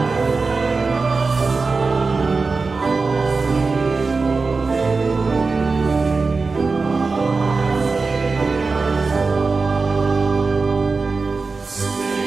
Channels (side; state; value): left; quieter; 4.2 dB